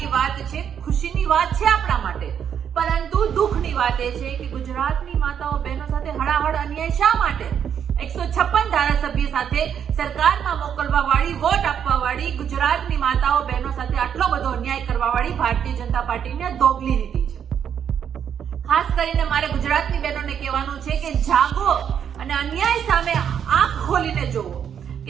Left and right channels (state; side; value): quieter; left; 8.4 dB